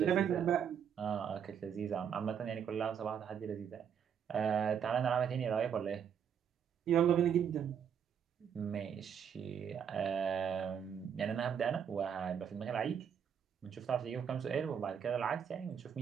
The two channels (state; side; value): quieter; left; 7.9 dB